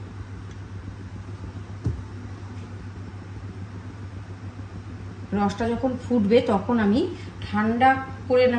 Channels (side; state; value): both; identical; correlation 1.00